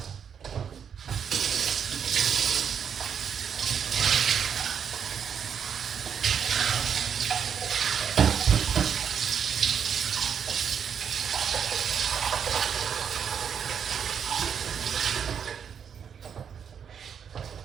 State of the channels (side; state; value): left; quieter; 7.6 dB